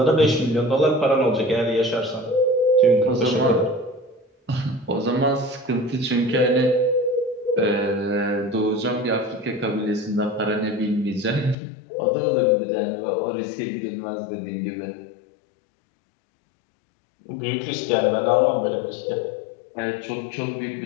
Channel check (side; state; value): right; drops out; at 11.6 s